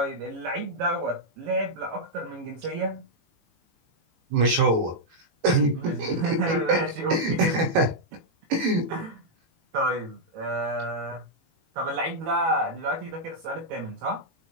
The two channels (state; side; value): late; left; 19 ms